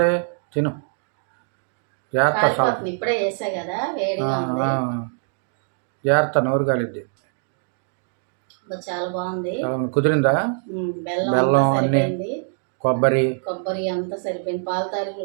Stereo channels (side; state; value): left; silent; 63 dB below the other